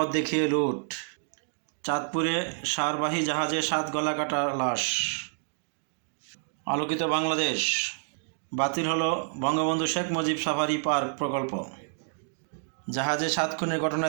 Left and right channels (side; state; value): left; silent; digital silence